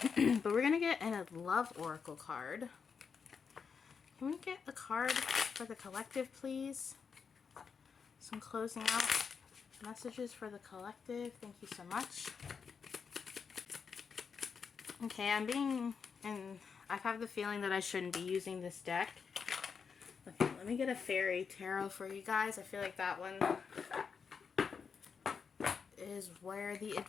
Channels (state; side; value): quieter; right; 6.0 dB